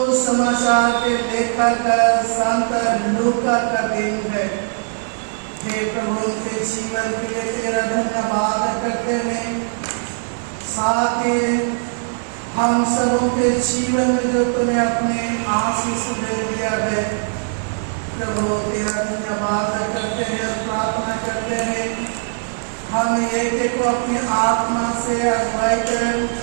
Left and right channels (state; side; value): silent; left; digital silence